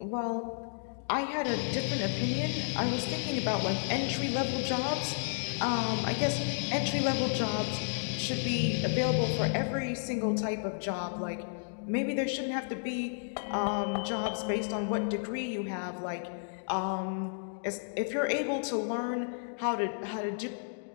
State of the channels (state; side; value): silent; right; digital silence